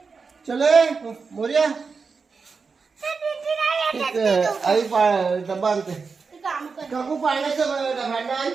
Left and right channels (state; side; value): quieter; left; 5.0 dB